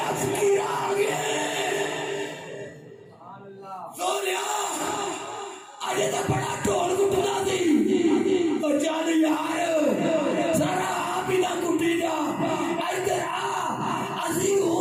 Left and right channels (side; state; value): both; identical; correlation 1.00